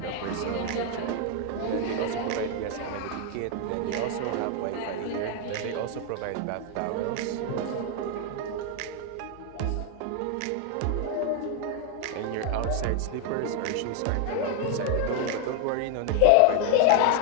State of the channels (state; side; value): different; both; correlation 0.00